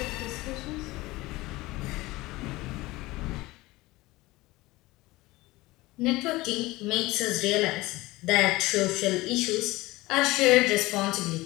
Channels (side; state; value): right; quieter; 20.0 dB